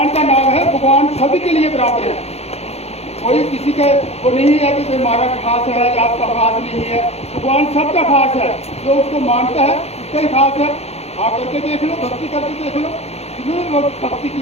का नाम है, भगवान सभी के लिए बराबर है। कोई किसी का वो नहीं है कि हमारा खास है या आपका खास नहीं है। भगवान सबका खास है, जो उसको मानता है उसका ही खास है। आप करके देख लो, भक्ति करके देख लो, जिन्होंने लोग भक्ति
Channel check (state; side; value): late; right; 0.30 ms